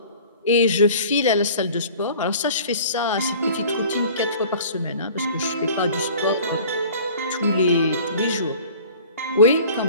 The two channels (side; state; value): both; inverted; correlation -0.45